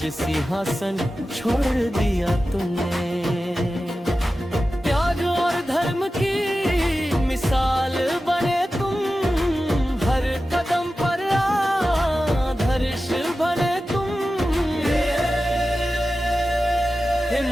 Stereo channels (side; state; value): both; normal; correlation 0.94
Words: सिंहासन छोड़ दिया तुमने, त्याग और धर्म की मिसाल बने तुम, हर कदम पर आदर्श बने तुम, हे